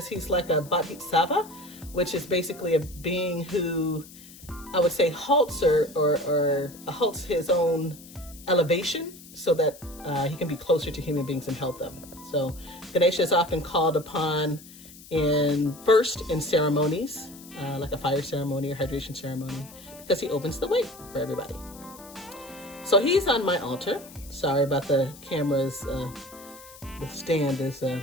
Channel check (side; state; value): left; noise; hiss, 19 dB below the sound